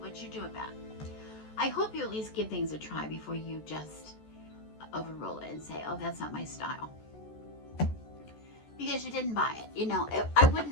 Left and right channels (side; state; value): right; late; 14 ms